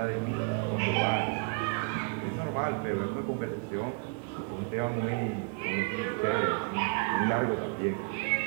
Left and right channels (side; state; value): left; quieter; 37.9 dB